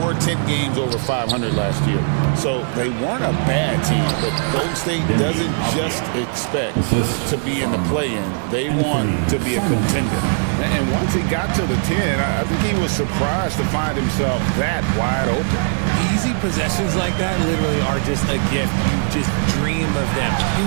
10 games over 500 last year. So they weren't a bad team, but Golden State doesn't just expect to be in the play-in. They want to be a contender. And once he got to the 10, I think he was surprised to find himself that wide open. Easy possessions like that literally are just a gift. You just dream of them.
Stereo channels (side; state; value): left; silent; 63 dB below the other